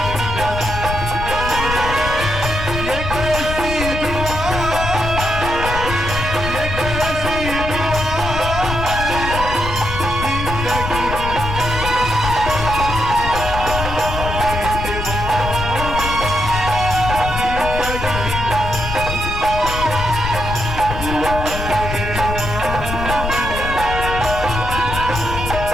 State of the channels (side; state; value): left; noise; rumble, 5 dB below the sound